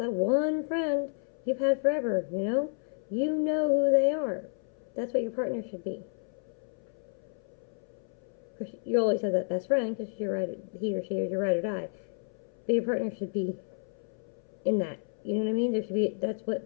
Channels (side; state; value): right; silent; 57 dB below the other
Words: one friend you've had forever, you know? You know who they are. That's what your partner should be. Of course, you always have that best friend, because he or she is your ride or die. But your partner should be in that. You know what I mean? That's